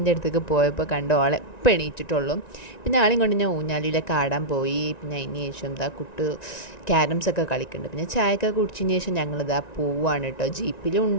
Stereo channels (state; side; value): late; right; 1.9 ms